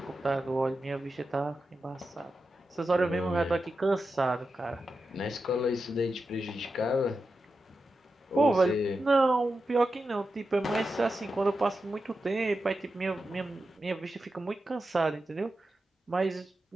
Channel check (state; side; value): normal; both; correlation 0.90